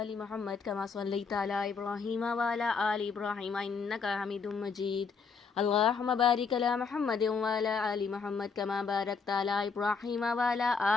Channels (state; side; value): quieter; right; 5.3 dB